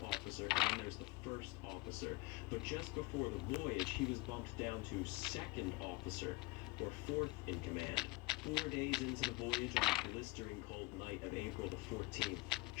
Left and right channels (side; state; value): right; quieter; 23.1 dB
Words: officer, and then there's the first officer. But just before the voyage, he was bumped down to second officer, or fourth in command. 4 days into the voyage on the blistering cold night of April the 14th,